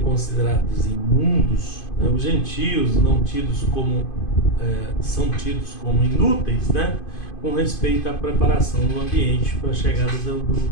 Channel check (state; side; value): late; right; 2.5 ms